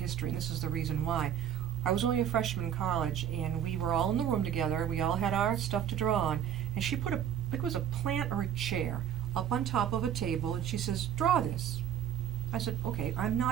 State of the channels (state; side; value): quieter; left; 9.6 dB